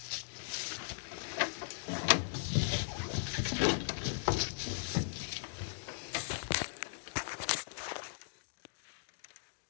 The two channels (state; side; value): silent; right; digital silence